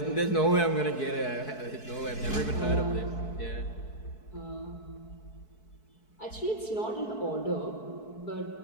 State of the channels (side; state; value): right; late; 4.6 ms